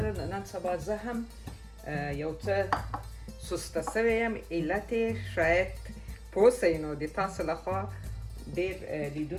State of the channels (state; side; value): identical; both; correlation 1.00